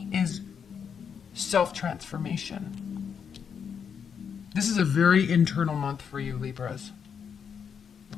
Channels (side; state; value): right; quieter; 7.1 dB